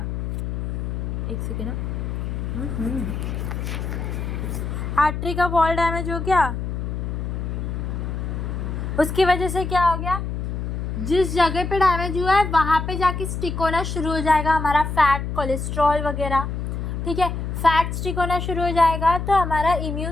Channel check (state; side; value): noise; left; hum, 4 dB below the sound